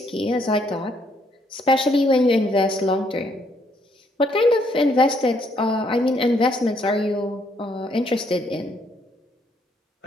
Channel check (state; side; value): normal; both; correlation 0.70